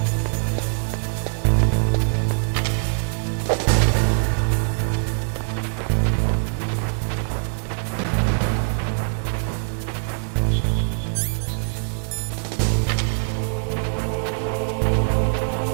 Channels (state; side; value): silent; left; digital silence